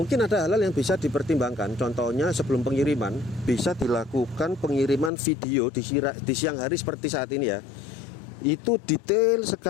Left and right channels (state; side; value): drops out; right; at 5.1 s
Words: ada hal-hal yang bisa dipertimbangkan. Contohnya sebelum pengiriman bisa dilakukan pengiriman video di siang hari seperti saat ini ya. Itu detail